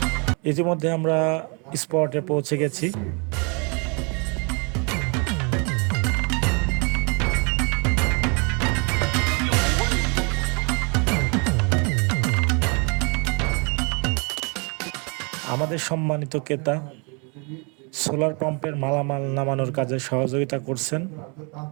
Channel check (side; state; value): left; quieter; 33.8 dB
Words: ইতিমধ্যে আমরা স্পটে পৌঁছে গেছি। আমাদের সম্মানিত ক্রেতা সোলার পাম্পের মালামাল নামানোর কাজে সহযোগিতা করছেন